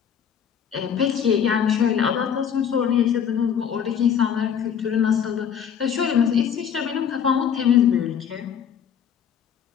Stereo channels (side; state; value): right; quieter; 8.1 dB